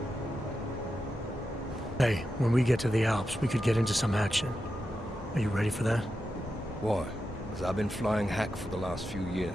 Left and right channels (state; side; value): normal; both; correlation 0.89